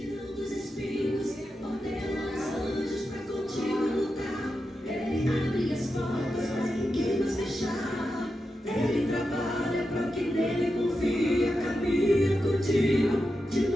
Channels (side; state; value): both; normal; correlation 0.89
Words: os espinhos, ordena os anjos para contigo lutar. Ele abre as portas para quem nos fechar. Ele trabalha para quem nele confia. Caminha contigo de